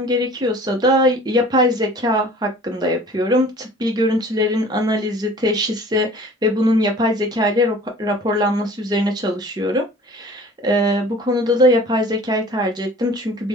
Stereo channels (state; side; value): normal; both; correlation 0.47